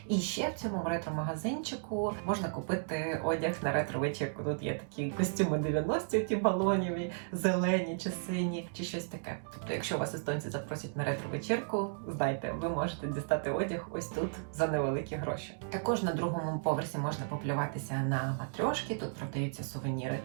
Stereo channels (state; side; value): silent; left; digital silence